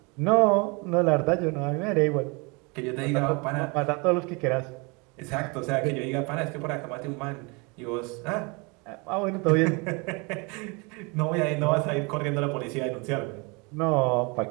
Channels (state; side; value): quieter; left; 29.6 dB